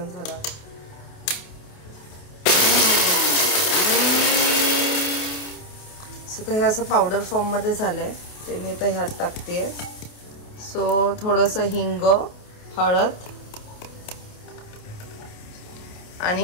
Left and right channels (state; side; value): late; right; 28 ms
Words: झालं. सो तर हे असं पावडर फॉर्म मध्ये झालंय ते मी आता ह्यात टाकतेय. सो थोडंसं हिंग, हळद